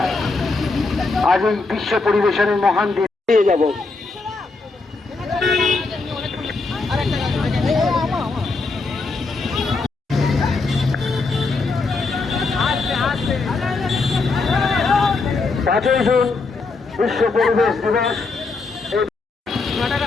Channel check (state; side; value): quieter; right; 3.9 dB